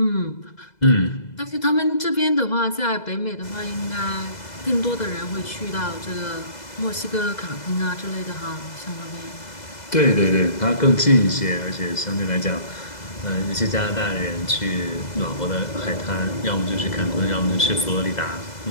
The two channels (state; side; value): late; right; 2.0 ms